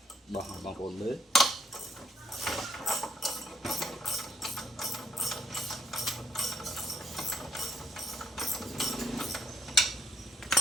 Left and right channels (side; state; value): both; normal; correlation 0.71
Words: bằng ôn mới